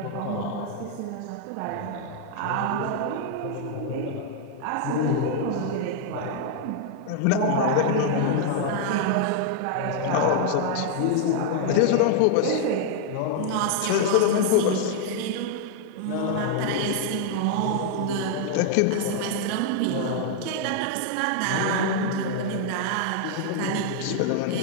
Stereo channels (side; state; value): both; different; correlation 0.00